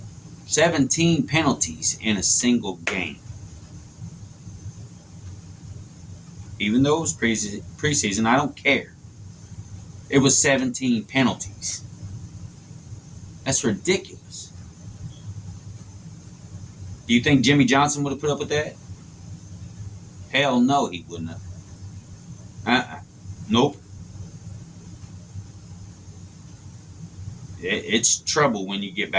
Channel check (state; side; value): identical; both; correlation 1.00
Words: 17 penalties in a single game. Even though it was preseason, I don't care. It was 17 penalties. That's ridiculous. Do you think Jimmy Johnson would have put up with that? Hell no, he wouldn't have. Nope. It's trouble when you get